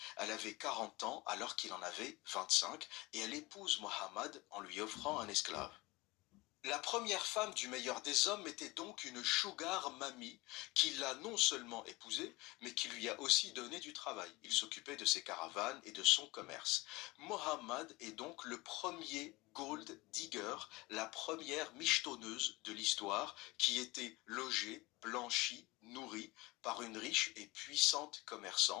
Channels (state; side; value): quieter; right; 22.3 dB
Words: Elle avait 40 ans alors qu'il en avait 25 et elle épouse Mohammed en lui offrant un esclave. La première femme du meilleur des hommes était donc une sugar mamie qui l'a non seulement épousée, mais qui lui a aussi donné du travail. Il s'occupait de ses caravanes et de son commerce. Mohammed est donc le premier gold digger, la première michetonneuse de l'histoire qui était logée, blanchie, nourrie par une riche et puissante